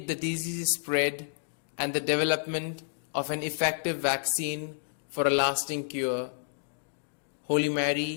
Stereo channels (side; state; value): right; silent; digital silence